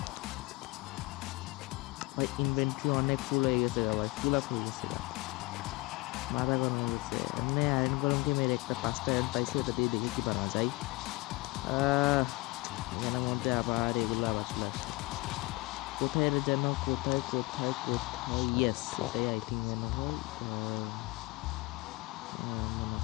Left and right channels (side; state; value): right; quieter; 23.4 dB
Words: ভাই। ইনভেন্টরি অনেক ফুল হয়ে গেছে গা ভাই, ফুল আপ হয়ে গেছে গা, মাথা গরম হয়ে গেছে। এমনি আয়রন গরমকে মেরে একটা 5টা আয়রন পাইছি, ওটা দিয়ে দেখি কি বানানো যায়। এখানের মধ্যে আবার এগুলো আবার চলে আসছে কোথায় যেন, কোথায় ইয়েস এটাই আই থিঙ্ক মনে হয়